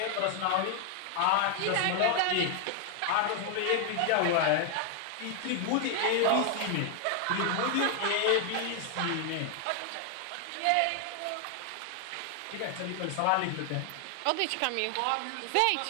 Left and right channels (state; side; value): different; both; correlation 0.00